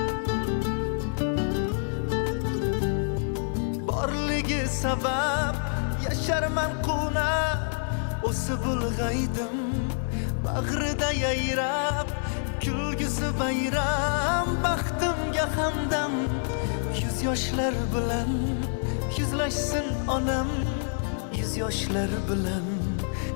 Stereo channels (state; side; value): silent; right; digital silence